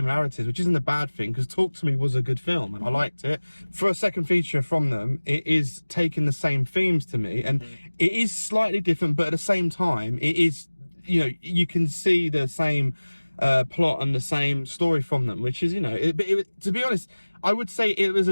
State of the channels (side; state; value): both; inverted; correlation -1.00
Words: which isn't a bad thing, because Talk to Me was a good film, and I liked it. For a second feature from them, it is taking the same themes to me, and it is slightly different, but at the same time, it is, you know, you can see the same plot and the same story from them, which is, you know, to be honest, I would say it was